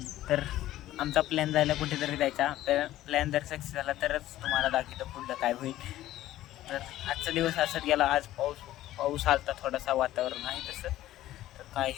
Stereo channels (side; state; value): right; quieter; 14.5 dB